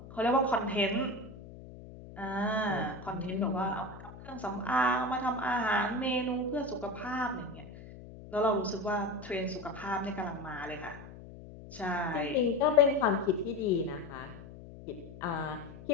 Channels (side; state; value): left; noise; hum, 15 dB below the sound